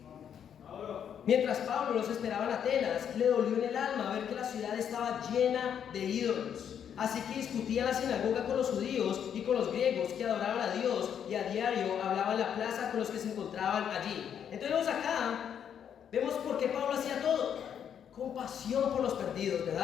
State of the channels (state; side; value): quieter; right; 8.6 dB